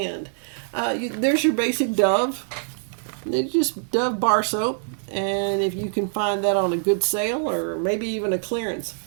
There's your basic Dove. It's just Dove bar soap. And if you can find that on a good sale or maybe even a clearance.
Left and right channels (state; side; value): silent; left; 63 dB below the other